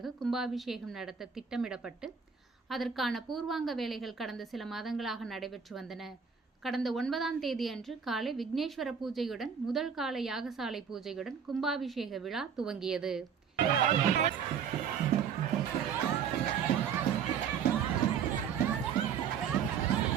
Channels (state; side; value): quieter; left; 7.0 dB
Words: கும்பாபிஷேகம் நடத்த திட்டமிடப்பட்டு அதற்கான பூர்வாங்க வேலைகள் கடந்த சில மாதங்களாக நடைபெற்று வந்தன. கடந்த 9ஆம் தேதி அன்று காலை விக்னேஸ்வர பூஜையுடன் முதல் கால யாகசாலை பூஜையுடன் கும்பாபிஷேக விழா துவங்கியது.